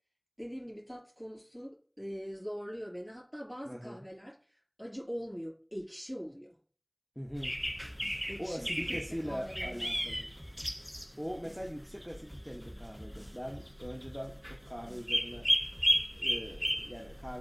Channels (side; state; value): both; identical; correlation 1.00